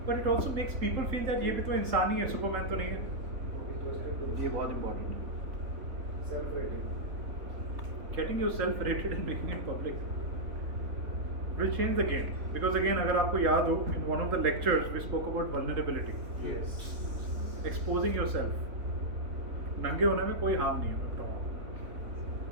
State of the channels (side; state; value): left; late; 3.8 ms